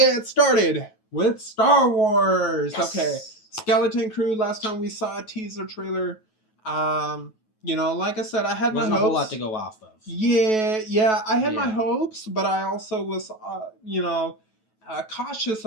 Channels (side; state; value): right; late; 9.2 ms